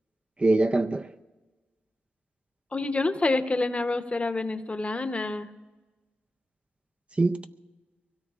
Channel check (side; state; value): both; normal; correlation 0.92